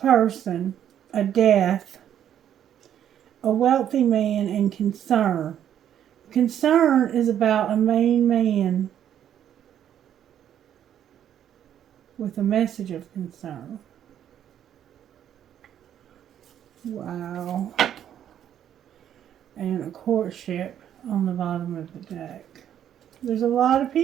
a death, a wealthy man, and concern. Concern is about a main man with a message of concern. Wow. And a courtship on the bottom of the deck. There's a lot of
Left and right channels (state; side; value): quieter; left; 10.1 dB